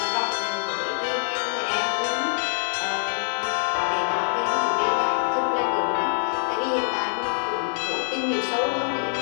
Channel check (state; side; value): silent; right; digital silence